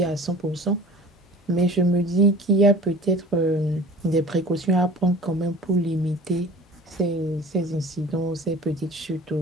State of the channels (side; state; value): both; normal; correlation 0.43